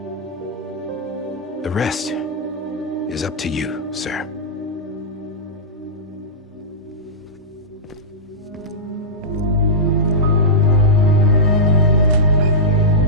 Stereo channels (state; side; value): normal; both; correlation -0.13